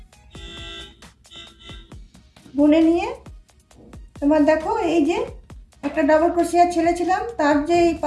বুনে নিয়ে তোমার দেখো এই যে একটা ডবল ক্রোশিয়া ছেড়েছিলাম, তার যে এই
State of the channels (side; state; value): both; identical; correlation 1.00